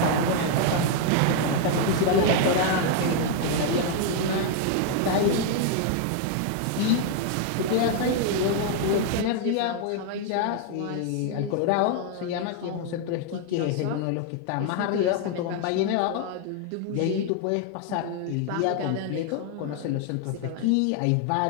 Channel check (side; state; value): both; different; correlation 0.00